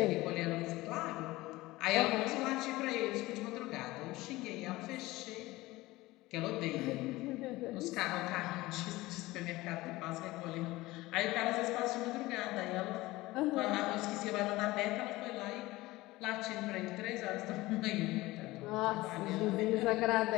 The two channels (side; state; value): right; quieter; 19.2 dB